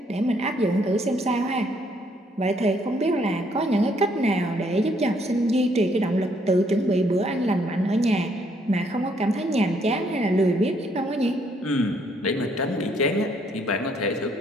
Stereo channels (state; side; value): normal; both; correlation 0.69